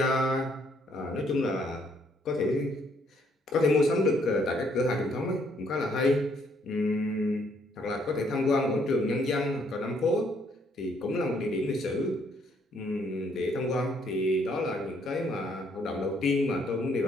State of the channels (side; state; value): both; normal; correlation 0.68